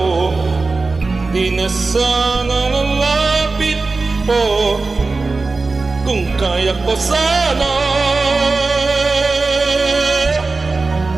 di na sana lalapit po. Kung kaya ko sana.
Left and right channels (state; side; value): quieter; left; 3.7 dB